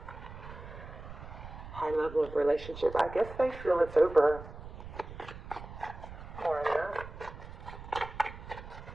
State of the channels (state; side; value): noise; right; rumble, 13 dB below the sound